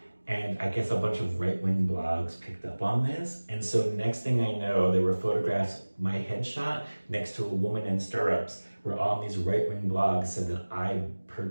And I guess a bunch of right-wing blogs picked up on this. And so next thing I know, there were photographs, my headshot next to a woman in stirrups, where all these right-wing blogs said that I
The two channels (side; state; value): both; inverted; correlation -1.00